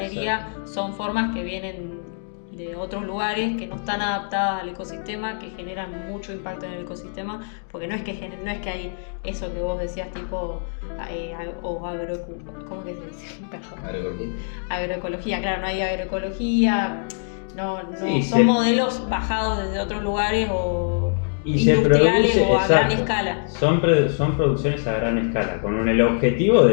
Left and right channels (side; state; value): right; silent; digital silence